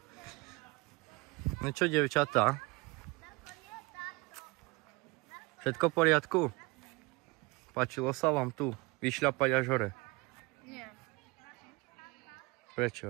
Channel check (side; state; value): left; quieter; 25.2 dB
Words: No čo, dievčatá? Všetko v poriadku? Páčilo sa vám tu vyšľapať až hore? Nie.